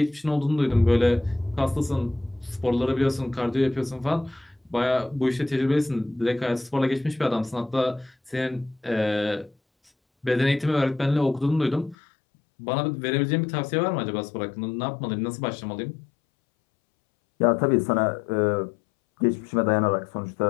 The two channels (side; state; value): right; drops out; at 12.0 s